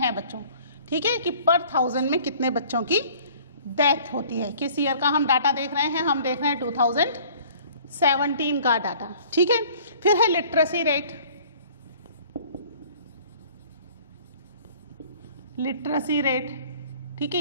बच्चों। ठीक है, कि पर 1000 में कितने बच्चों की डेथ होती है। किस ईयर का हम डाटा देख रहे हैं, हम देख रहे हैं 2017 का डाटा। ठीक है, फिर है लिटरेसी रेट। लिटरेसी रेट, ठीक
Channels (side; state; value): both; inverted; correlation -0.52